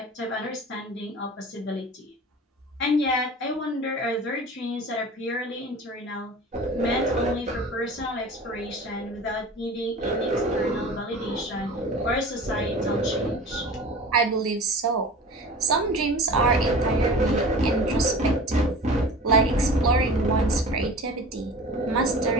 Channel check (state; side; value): normal; both; correlation 0.38